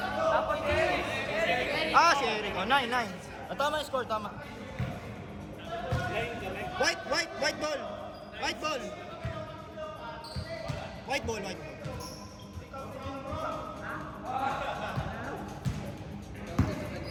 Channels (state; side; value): identical; both; correlation 1.00